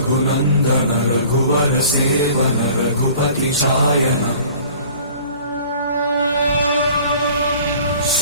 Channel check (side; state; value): both; inverted; correlation -0.48